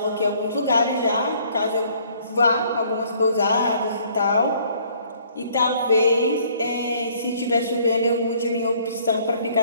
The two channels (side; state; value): both; inverted; correlation -0.61